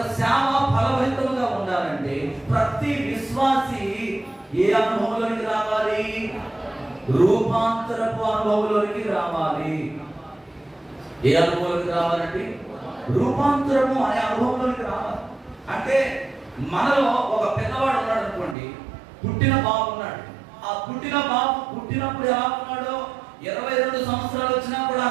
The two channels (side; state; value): left; drops out; at 18.6 s